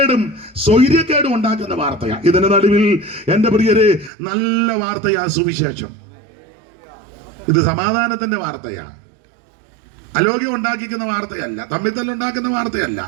സ്വൈര്യക്കേടും ഉണ്ടാക്കുന്ന വാർത്തയാണ്. ഇതിന്റെ നടുവിൽ എന്റെ പ്രിയരെ നല്ല വാർത്തയാ സുവിശേഷം. ഇത് സമാധാനത്തിന്റെ വാർത്തയാണ്. അലോഗ്യം ഉണ്ടാക്കിക്കുന്ന വാർത്തയല്ല, തമ്മിത്തല്ലുണ്ടാക്കുന്ന വാർത്തയല്ല.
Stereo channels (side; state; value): left; drops out; at 4.1 s